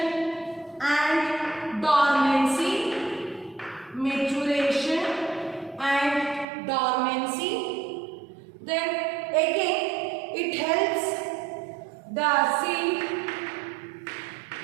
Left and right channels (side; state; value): left; drops out; at 6.5 s